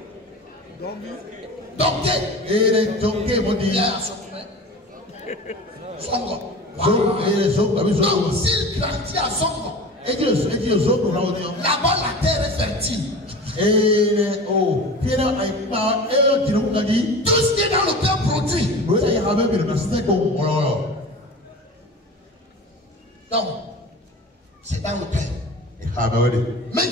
Songo. Donc, s'il grandit à Songo, là-bas la terre est fertile. Tout ce qui est dans le cœur produit. Donc, c'est dans le cœur. Même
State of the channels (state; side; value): normal; both; correlation 0.36